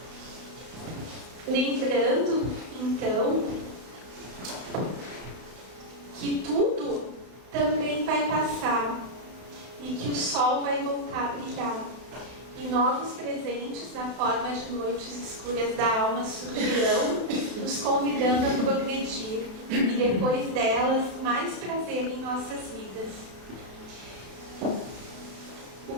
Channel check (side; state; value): left; late; 32 ms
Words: Lembrando, então, que tudo também vai passar e que o sol vai voltar a brilhar. E novos presentes na forma de noites escuras da alma surgirão, nos convidando a progredir, e depois delas, mais prazer em nossas vidas. O